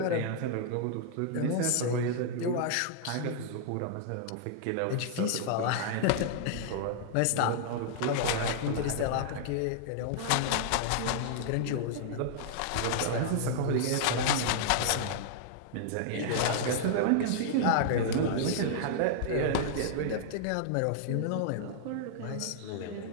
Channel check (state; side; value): different; both; correlation -0.01